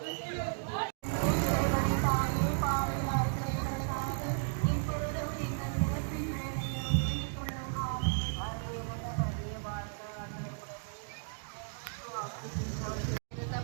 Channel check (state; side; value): silent; left; digital silence